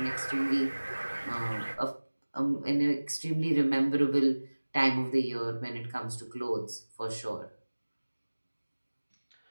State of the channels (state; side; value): inverted; both; correlation -1.00